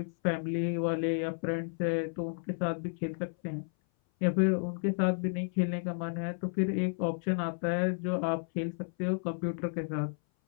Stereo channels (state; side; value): silent; right; 56 dB below the other